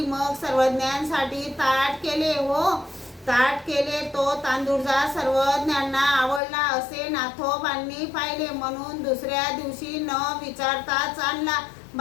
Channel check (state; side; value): drops out; right; at 6.4 s